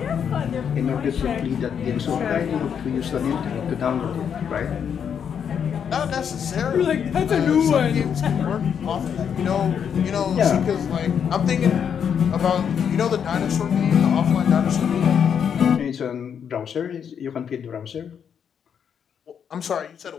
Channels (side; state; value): right; quieter; 7.8 dB